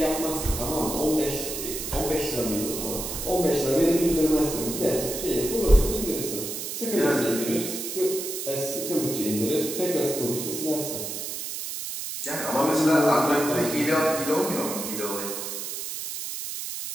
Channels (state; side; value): noise; right; hiss, 6 dB below the sound